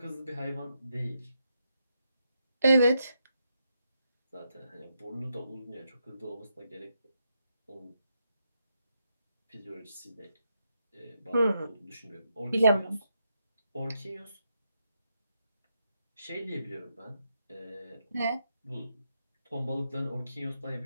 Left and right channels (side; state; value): both; inverted; correlation -0.81